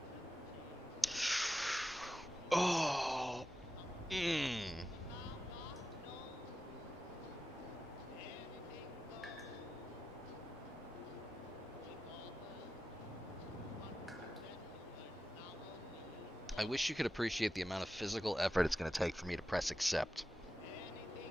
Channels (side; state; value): both; normal; correlation 0.91